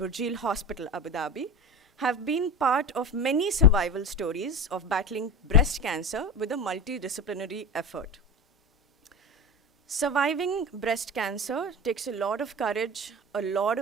Abu Dhabi have been part of many survival stories of battling breast cancer with a multidisciplinary effort. Surviving breast cancer takes a lot of courage, a lot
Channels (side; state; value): both; normal; correlation 0.26